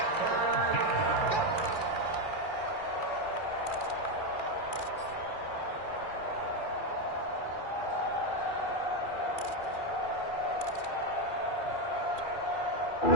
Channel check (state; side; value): late; right; 2.4 ms